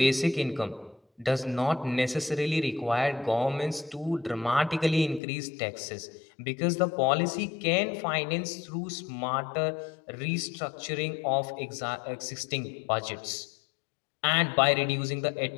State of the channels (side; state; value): right; drops out; at 5.2 s